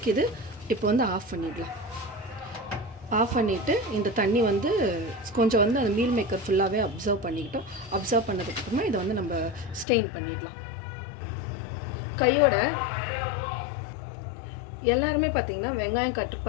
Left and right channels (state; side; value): drops out; right; at 9.9 s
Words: இப்போ வந்து ஆஃப் பண்ணிடலாம். ஆஃப் பண்ணிவிட்டு இந்த தண்ணி வந்து கொஞ்சம் வந்து அந்த மீல் மேக்கர் ஃபுல்லாகவே அப்சர்வ் பண்ணிக்கிட்டோம். அப்சர்வ் பண்ணதுக்கப்புறமா இதை வந்து நம்ம ஸ்டெயின் பண்ணிடலாம். கையோட எல்லாருமே பார்த்திங்கன்னா வெங்காயம் கட்